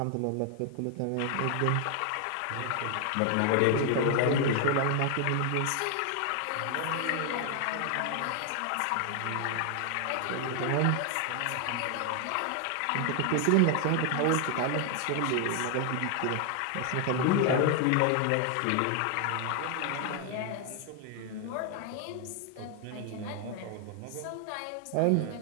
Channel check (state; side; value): different; both; correlation 0.00